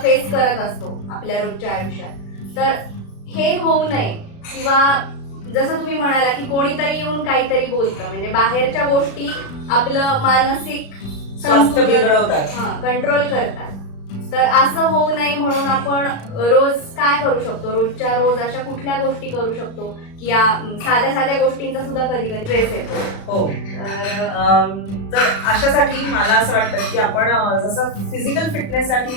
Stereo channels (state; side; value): late; right; 36 ms